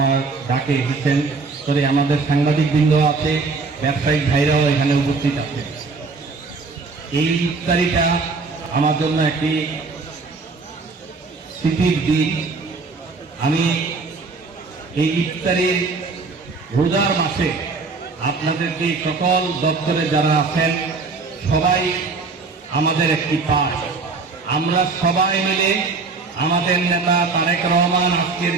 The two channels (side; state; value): left; quieter; 4.2 dB